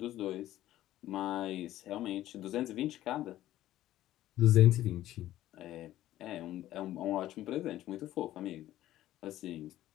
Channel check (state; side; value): quieter; right; 14.0 dB